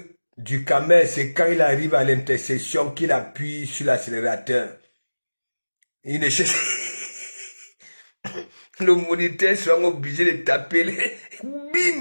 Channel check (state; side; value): inverted; both; correlation -1.00